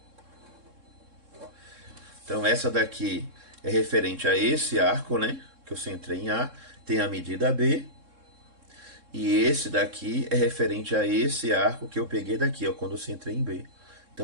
Então essa daqui é referente a esse arco, né? Que eu centrei em A, tem a medida B. E esse daqui é referente a esse arco que eu peguei daqui, ó, quando eu centrei em B.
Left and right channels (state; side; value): late; left; 3.7 ms